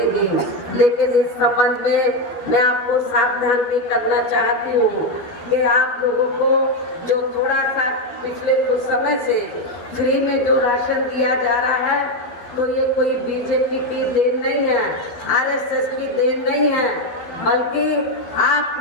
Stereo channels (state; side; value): late; right; 12 ms